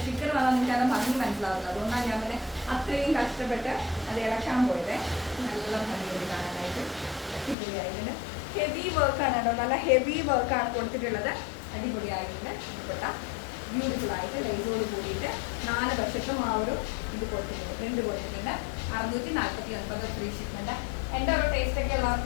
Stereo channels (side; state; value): right; drops out; at 7.6 s